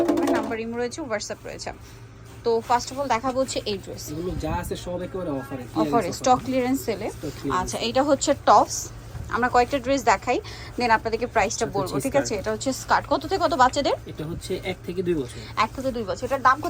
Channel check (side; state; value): both; identical; correlation 1.00